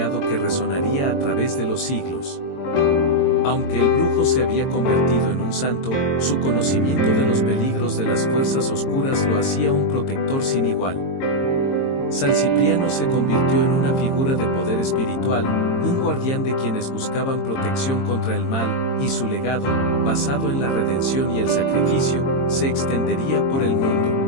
que resonaría a través de los siglos. Aunque el brujo se había convertido en un santo, su conocimiento de los peligros de las fuerzas oscuras lo hacía un protector sin igual. San Cipriano se convirtió en una figura de poder espiritual, un guardián de quienes buscaban protección contra el mal, y su legado, basado en la redención y el sacrificio, se extendería por el mundo.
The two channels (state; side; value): late; right; 22 ms